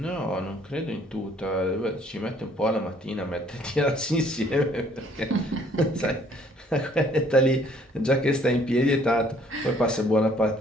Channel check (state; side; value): normal; both; correlation 0.61